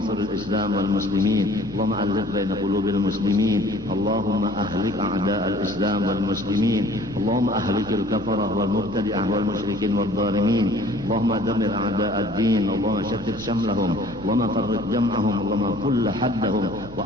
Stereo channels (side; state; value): both; normal; correlation 0.52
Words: الإسلام والمسلمين. اللهم ألف بين قلوب المسلمين. اللهم أهلك أعداء الإسلام والمسلمين. اللهم أهلك الكفرة والمبتدعة والمشركين والظالمين. اللهم دمر أعداء الدين. اللهم شتت شملهم. اللهم فرق جمعهم. اللهم كل حدهم